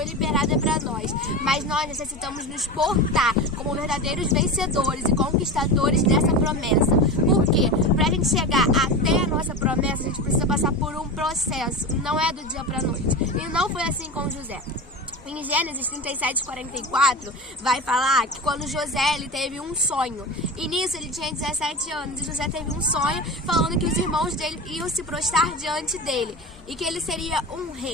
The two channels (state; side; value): normal; both; correlation 0.27